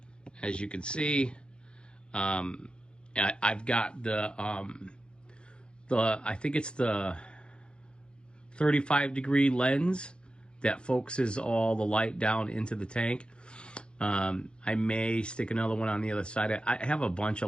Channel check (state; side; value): late; right; 0.054 ms